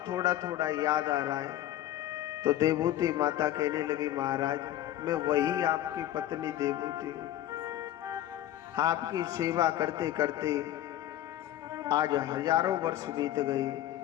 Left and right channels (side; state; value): right; quieter; 13.1 dB